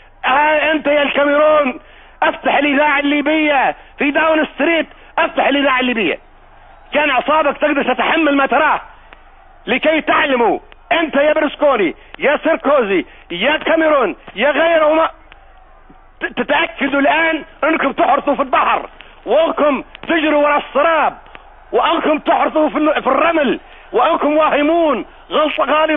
انت يا الكاميرون، افتح الاذاعه الليبيه في داون ستريت، افتح الاذاعه الليبيه. كان اعصابك تقدر تتحمل ما تراه، لكي تعلموا انت يا برسكوني يا سيركوزي يا كاميرون يا غيرهما، تتاكدوا الان انكم تحرثوا في البحر، وانكم تجروا وراء السراب، وانكم تحرثوا في الرمل، وانكم واهمون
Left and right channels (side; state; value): both; identical; correlation 1.00